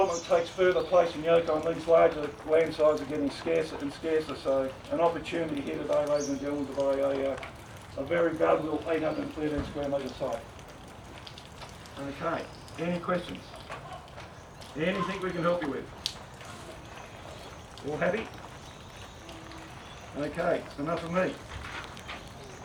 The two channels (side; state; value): both; identical; correlation 1.00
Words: takes further place in Yokine, these larger land sizes are getting scarcer and scarcer, so an opportunity here today, ladies and gentlemen, to buy a very valuable 813 square metre site. Okay, any questions? Anything we can help you with? All happy? Okay, it's enough of me.